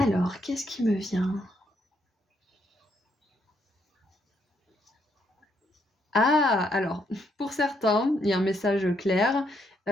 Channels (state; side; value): normal; both; correlation 0.74